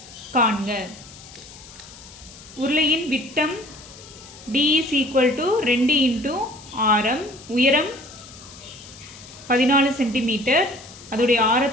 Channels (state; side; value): noise; left; hiss, 19 dB below the sound